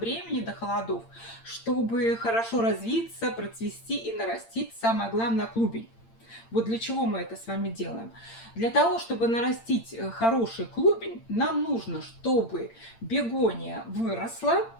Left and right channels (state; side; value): late; right; 8.8 ms